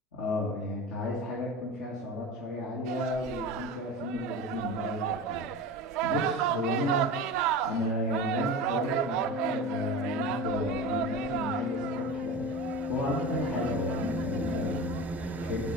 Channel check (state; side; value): normal; both; correlation 0.31